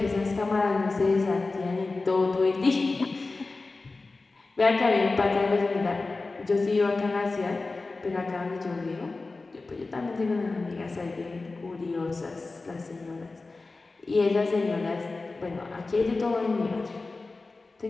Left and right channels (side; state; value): right; quieter; 3.6 dB